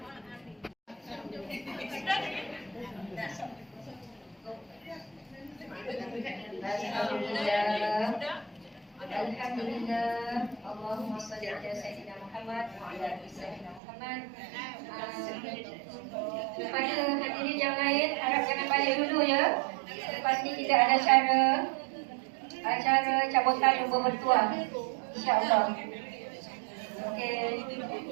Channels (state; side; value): drops out; left; at 13.8 s